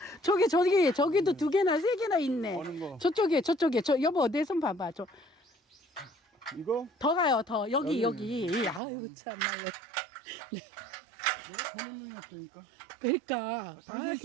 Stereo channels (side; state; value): left; drops out; at 8.8 s